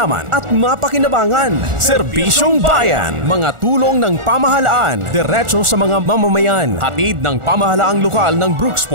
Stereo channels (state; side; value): late; left; 1.4 ms